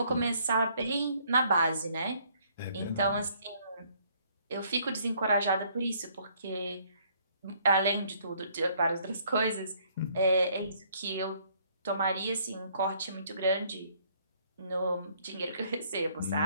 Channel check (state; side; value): inverted; both; correlation -0.65